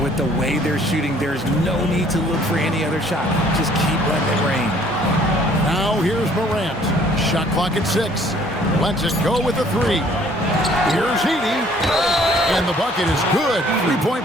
With the way they're shooting, there's no need to look for any other shot. Just keep letting it rain. Now here's Morant. Shot clock at 6. Lets it go with a 3. Here's Edey. And the bucket is good. 3-point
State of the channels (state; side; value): normal; both; correlation 0.58